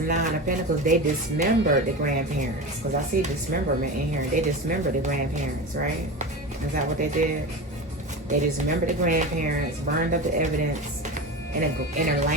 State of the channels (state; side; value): normal; both; correlation 0.26